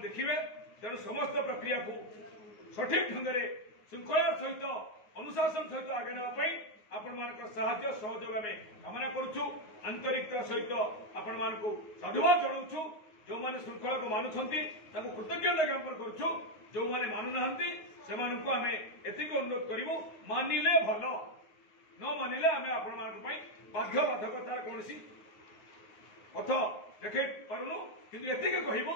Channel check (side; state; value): right; late; 9.5 ms